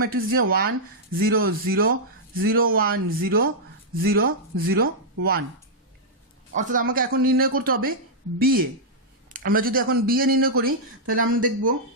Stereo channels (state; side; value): normal; both; correlation -0.08